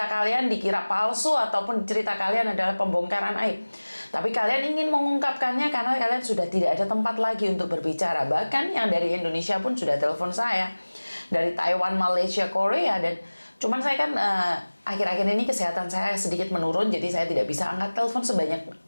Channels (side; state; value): both; inverted; correlation -1.00